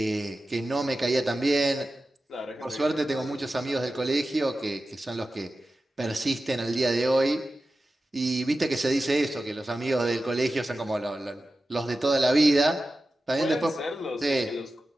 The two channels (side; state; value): both; normal; correlation 0.94